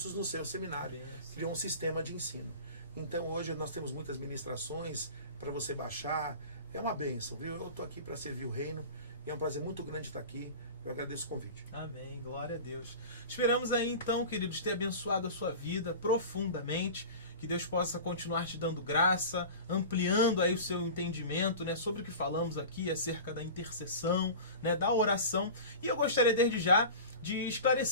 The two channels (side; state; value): both; inverted; correlation -0.34